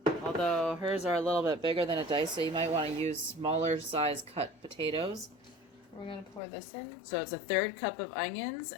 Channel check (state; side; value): drops out; right; at 6.4 s